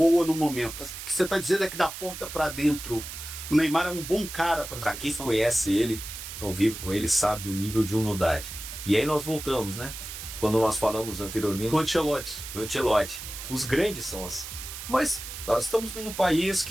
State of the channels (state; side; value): noise; right; hiss, 10 dB below the sound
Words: no momento. O que você está dizendo é que da porta para dentro, o Neymar é um bom cara para quem conhece ele, convive com ele, sabe do nível de humildade. E aí nós voltamos, né? Quando nós falamos anteriormente do Ancelotti. Os grandes são assim. Mas nós estamos num país